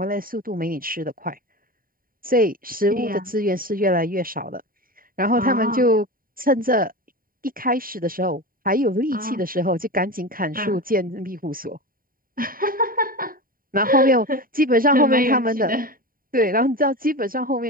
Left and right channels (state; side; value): late; left; 0.41 ms